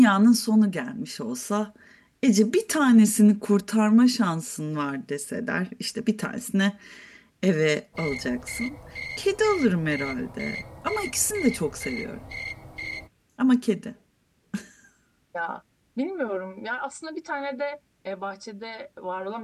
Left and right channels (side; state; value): both; identical; correlation 1.00